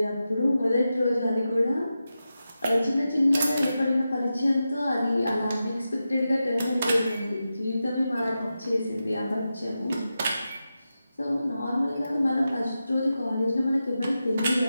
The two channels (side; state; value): both; inverted; correlation -0.91